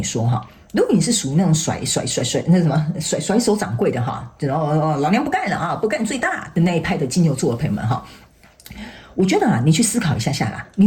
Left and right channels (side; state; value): both; identical; correlation 1.00